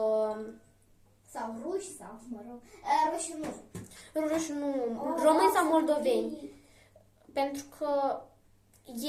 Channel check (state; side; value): identical; both; correlation 1.00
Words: sau ruși sau, mă rog. Ruși nu. Ruși nu. Români sau moldoveni. Pentru că